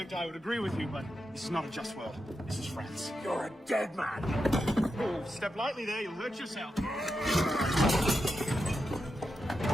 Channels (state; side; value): normal; both; correlation 0.87